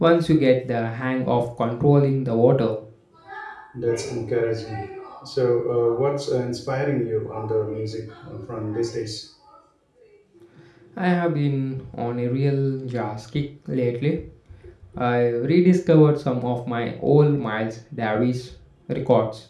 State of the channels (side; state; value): both; identical; correlation 1.00